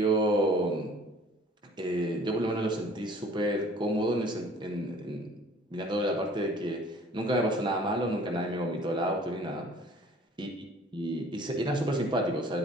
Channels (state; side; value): normal; both; correlation 0.52